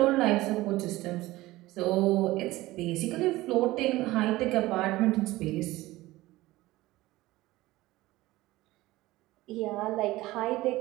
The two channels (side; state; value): left; quieter; 18.2 dB